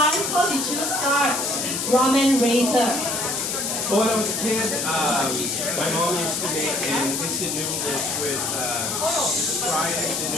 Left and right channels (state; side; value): noise; left; hiss, 1 dB below the sound